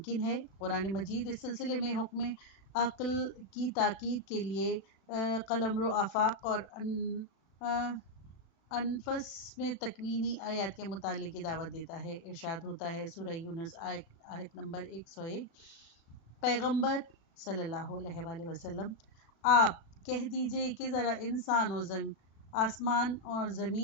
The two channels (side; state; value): right; late; 36 ms